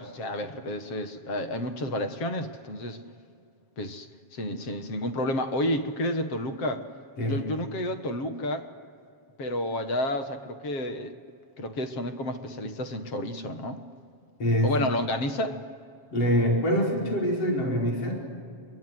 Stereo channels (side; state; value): right; late; 7.4 ms